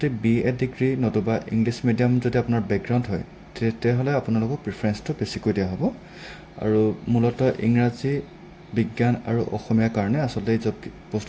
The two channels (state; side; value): identical; both; correlation 1.00